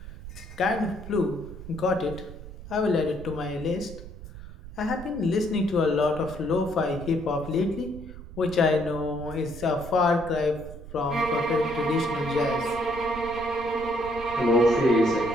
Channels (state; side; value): noise; right; rumble, 14 dB below the sound